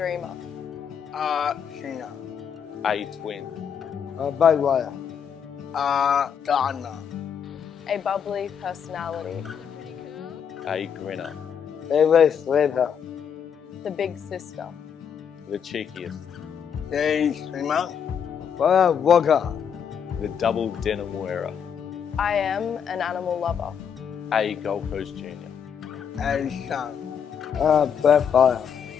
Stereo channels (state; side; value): quieter; right; 7.6 dB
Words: Sheena. a twin. Bagwire. Donna. a bubbly personality, A grinner, Favorite flavor. the big sister, the cheekiest, Day Swimmer. Walker. the double denim wearer, I am an animal lover, a Gold Coast Junior, And Sean. Backfire.